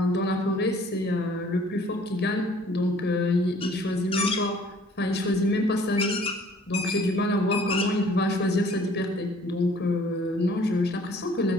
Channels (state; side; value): normal; both; correlation 0.55